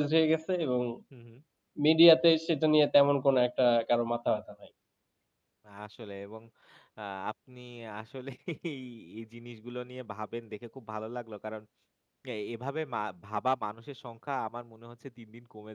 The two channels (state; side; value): identical; both; correlation 1.00